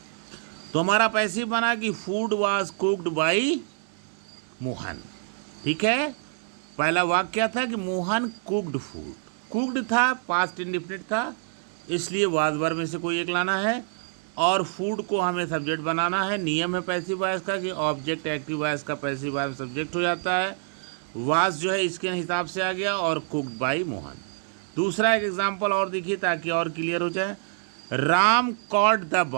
तो हमारा पैसिव बना कि food was cooked bye Mohan. ठीक है, पहला वाक्य क्या था कि मोहन कुक्ड फूड। कुक्ड था, पास्ट इंडेफिनिट था, इसलिए वाज वर्ब में से कोई एक लाना है, और फूड को हमें सब्जेक्ट बनाना है। नियम है पैसिव वॉइस का कि ऑब्जेक्ट एक्टिव वॉइस का पैसिव वॉइस सब्जेक्ट हो जाता है। वाज जो है इसके हिसाब से आ गया, और कुक्ड बाय मोहन। दूसरा एक एग्जाम्पल और देखिए ताकि और क्लियर हो जाए। Ram cot the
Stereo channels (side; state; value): left; silent; digital silence